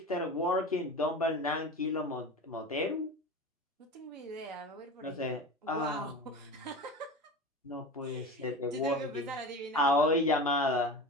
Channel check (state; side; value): normal; both; correlation 0.31